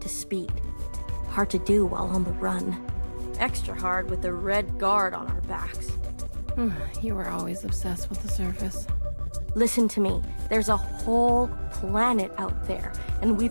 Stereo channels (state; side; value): inverted; both; correlation -1.00